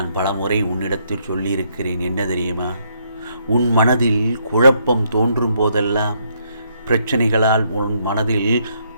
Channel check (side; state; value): both; inverted; correlation -0.73